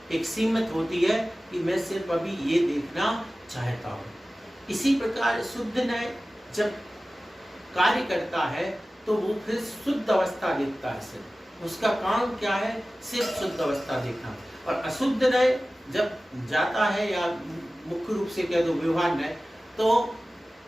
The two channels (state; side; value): normal; both; correlation 0.96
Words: एक सीमित होती है कि मैं सिर्फ अभी ये देखना चाहता हूँ। इसी प्रकार शुद्ध नय जब कार्य करता है तो वो फिर शुद्ध अवस्था देखता है, सिर्फ उसका काम क्या है, सिर्फ शुद्ध अवस्था देखना। और अशुद्ध नय जब जाता है, या मुख्य रूप से कह दो व्यवहार नय, तो